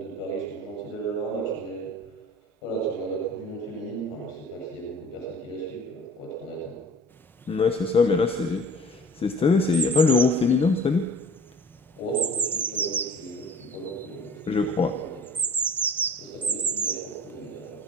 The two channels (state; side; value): normal; both; correlation 0.45